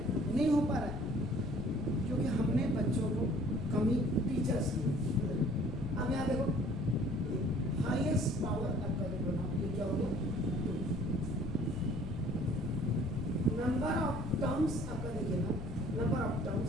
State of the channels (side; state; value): left; noise; rumble, 7 dB below the sound